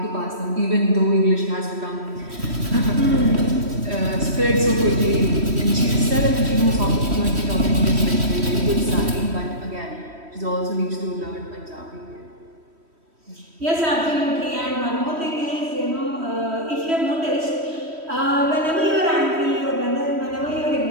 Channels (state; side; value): late; left; 3.1 ms